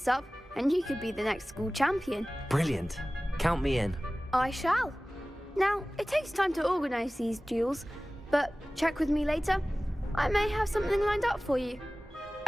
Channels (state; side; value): normal; both; correlation 0.97